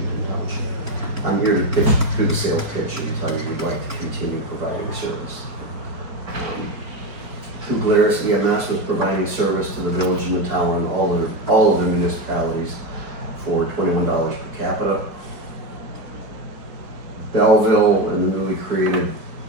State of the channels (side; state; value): left; late; 4.7 ms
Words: Township. I'm here to do the sales pitch and tell you we'd like to continue providing service. New Glarus EMS was providing service to the village and the town and all of the municipalities for $21 per capita. Belleville and the newly created